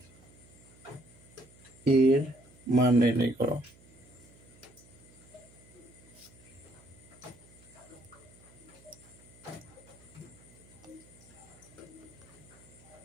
এর মান নির্ণয় করো।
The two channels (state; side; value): noise; right; hum, 24 dB below the sound